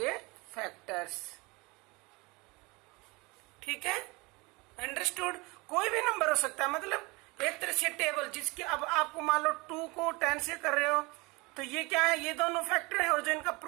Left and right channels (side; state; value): left; quieter; 25.2 dB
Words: फैक्टर्स। ठीक है, अंडरस्टूड। कोई भी नंबर हो सकता है, मतलब एक तरह से टेबल जिसके अब आपको मान लो 2 को 10 से कर रहे हो तो ये क्या है? ये दोनों फैक्टर है, और जो इनका